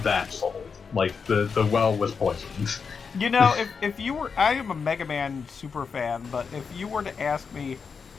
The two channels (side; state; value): right; quieter; 5.6 dB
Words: that sold. Like the well was poisoned. You know, if you were... I am a Mega Man super fan, but if you were to ask me